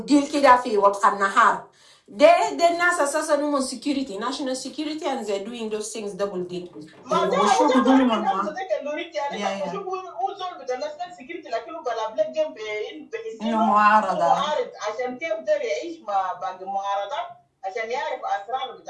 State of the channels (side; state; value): both; identical; correlation 1.00